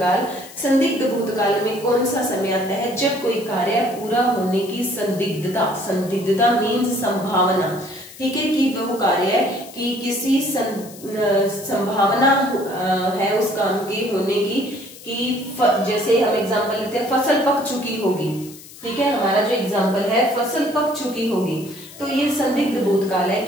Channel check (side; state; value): left; noise; hiss, 18 dB below the sound